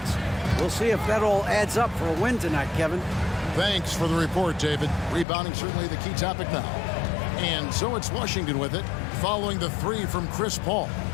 We'll see if that all adds up for a win tonight, Kevin. Thanks for the report, David. Rebounding certainly the key topic now. And so it's Washington with it, following the three from Chris Paul.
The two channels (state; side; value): drops out; right; at 5.2 s